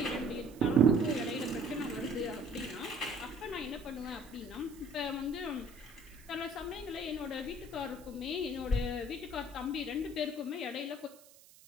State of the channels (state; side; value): noise; right; hiss, 23 dB below the sound